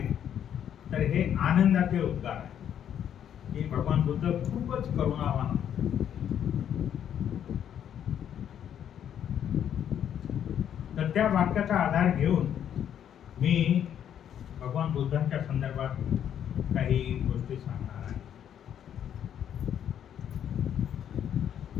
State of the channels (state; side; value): quieter; right; 9.5 dB